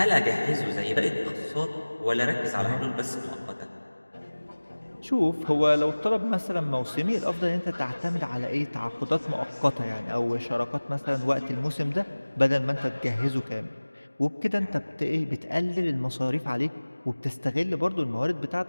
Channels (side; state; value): both; inverted; correlation -1.00